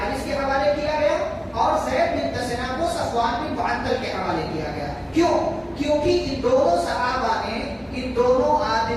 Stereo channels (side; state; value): both; identical; correlation 1.00